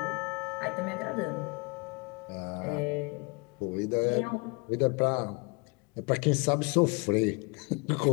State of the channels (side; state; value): right; quieter; 29.7 dB